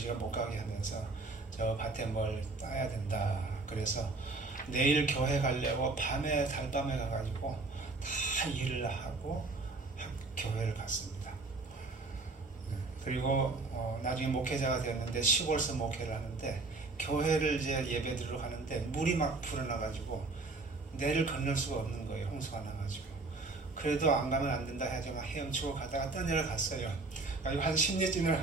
못 가게 하면서 저 밭에 뭘 따야 된다. 그래서 내일 교회 가려고 밤에 달밤에 가가지고 다 일을 하고 교회를 갔습니다. 그리고 나중에 목회자가 되었는데 시골서 목회를 하는데 교회를 이제 예배 드리러 가는데 물이 막 불어나가지고 내를 건널 수가 없는 거예요. 홍수가 나가지고. 그래도 안 가면 안 된다 해서 막 헤엄치고 가다가 떠내려갔어요. 그리고 한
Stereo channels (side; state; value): left; quieter; 3.5 dB